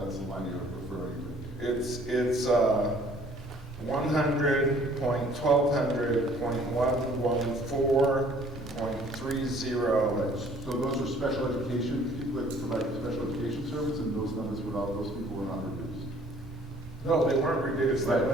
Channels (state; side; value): normal; both; correlation 0.56